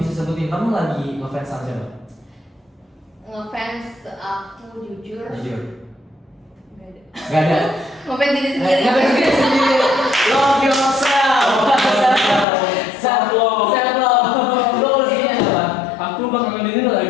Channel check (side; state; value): right; drops out; at 12.5 s